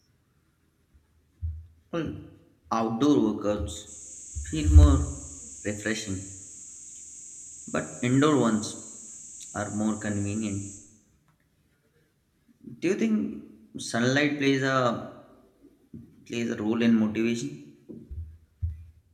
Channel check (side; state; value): both; identical; correlation 1.00